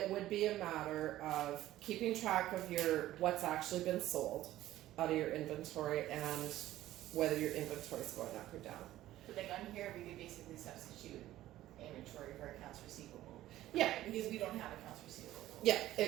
would be a matter of keeping track of what's actually been sold out of your inventory and whether your inventory is going up or down. But like on here, we could basically substitute inventory for accounts receivable. Yeah. Right? Because we don't have accounts receivable. Yeah,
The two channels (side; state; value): left; quieter; 14.5 dB